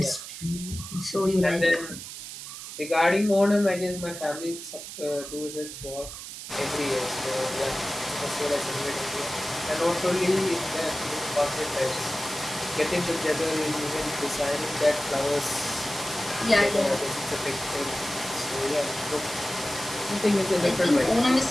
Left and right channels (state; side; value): noise; right; hiss, 10 dB below the sound